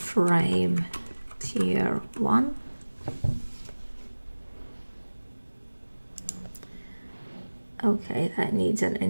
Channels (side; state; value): both; inverted; correlation -1.00